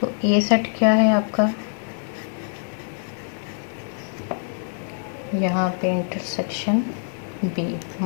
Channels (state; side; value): silent; right; digital silence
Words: ए सेट क्या है आपका, यहाँ पे इंटरसेक्शन बी,